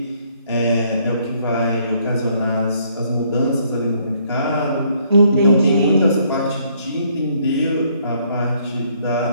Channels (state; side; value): inverted; both; correlation -0.67